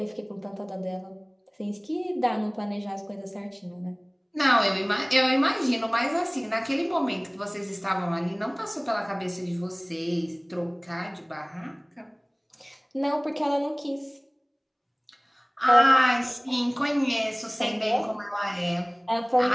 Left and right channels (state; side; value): identical; both; correlation 1.00